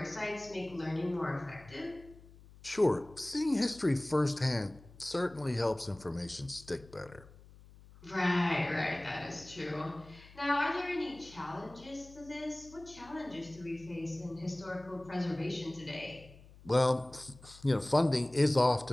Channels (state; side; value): noise; left; hum, 21 dB below the sound